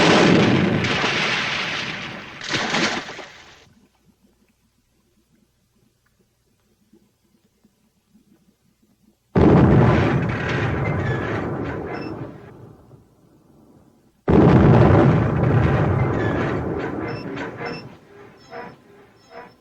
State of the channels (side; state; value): both; identical; correlation 1.00